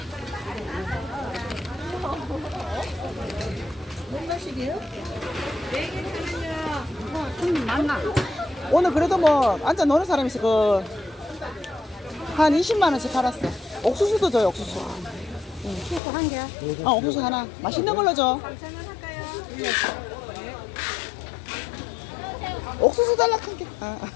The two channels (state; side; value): drops out; right; at 16.0 s